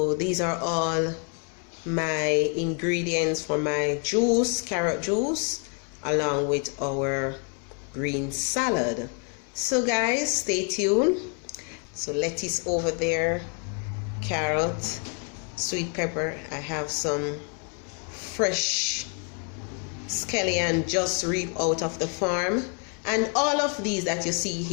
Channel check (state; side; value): quieter; right; 38.5 dB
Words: these are all my ingredients for my juice, carrot juice, along with our green salad. So guys, stay tuned. So lettuce over there, carrot, sweet pepper. I have some fresh scallion just reaped out of the farm, and all of these that you see